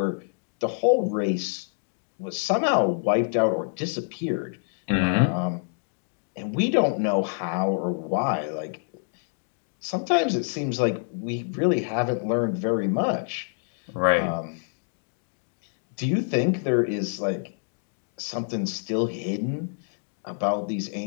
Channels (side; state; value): right; silent; 60 dB below the other